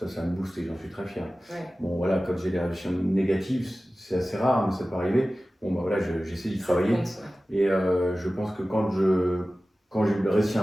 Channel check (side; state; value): both; normal; correlation 0.96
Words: ça me booste et j'en suis très fier. Ouais. Bon, voilà, quand j'ai des réflexions négatives, c'est assez rare, mais ça peut arriver. Bon, bah voilà, j'essaie d'y travailler. Et je pense que quand j'ai réussi